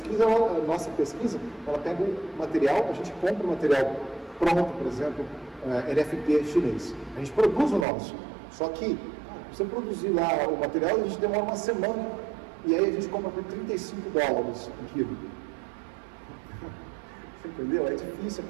nossa pesquisa, ela pega o material, a gente compra o material pronto, por exemplo, LFP chinês. A gente produz o nosso. Só que, você produzir lá o material, a gente demora uma semana, e aí a gente compra por $35 um quilo. Entendeu? É difícil a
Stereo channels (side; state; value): left; drops out; at 7.9 s